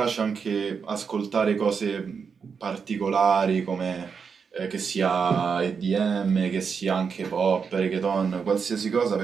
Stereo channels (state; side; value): quieter; left; 6.0 dB